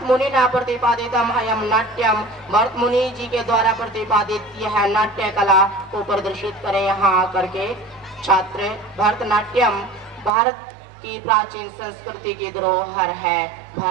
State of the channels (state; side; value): drops out; left; at 10.3 s